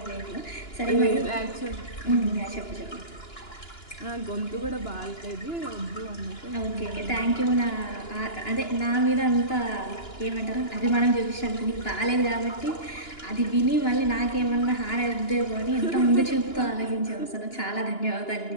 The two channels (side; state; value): right; late; 2.9 ms